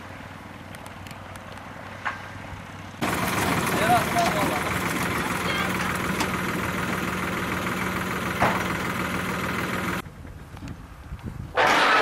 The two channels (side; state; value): both; identical; correlation 1.00